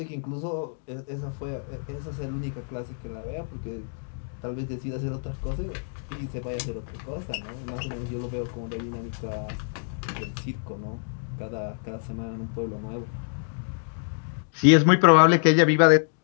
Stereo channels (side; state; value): right; silent; digital silence